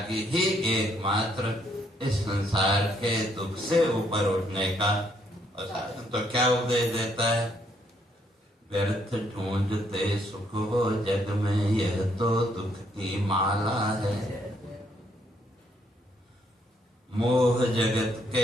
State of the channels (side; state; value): both; normal; correlation 0.71